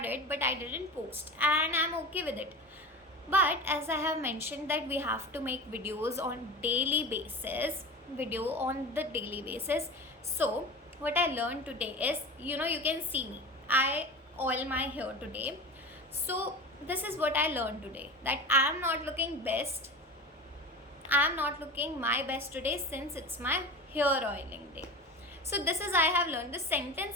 but I didn't post, and I'm okay with it. But as I have mentioned that we have to make videos on daily basis, so what I learned today is, you can see me, I oil my hair today. So this is what I learned today, that I'm not looking my best today since it's my hair oiling day. So this is I have learned, this sentence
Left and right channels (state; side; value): normal; both; correlation 0.31